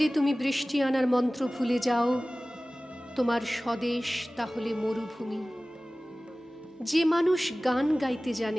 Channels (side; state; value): both; normal; correlation 0.98